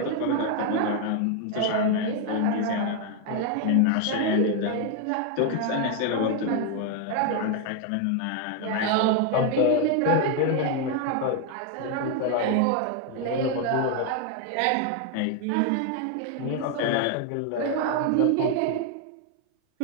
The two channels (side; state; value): both; different; correlation 0.01